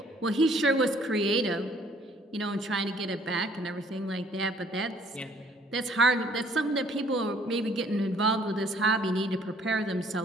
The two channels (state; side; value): normal; both; correlation 0.60